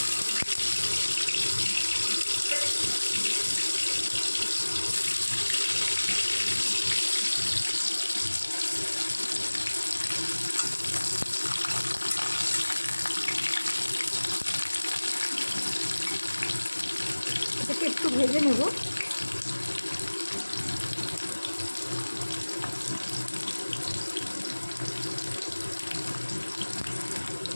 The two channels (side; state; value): both; inverted; correlation -1.00